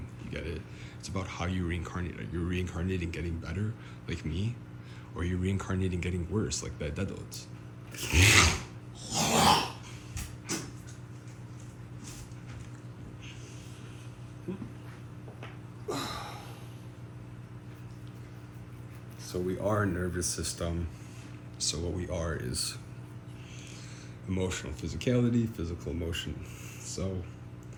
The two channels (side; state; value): both; identical; correlation 1.00